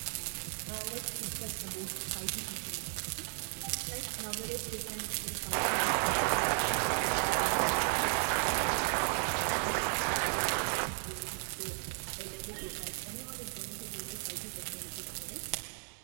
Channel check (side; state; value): left; silent; 55 dB below the other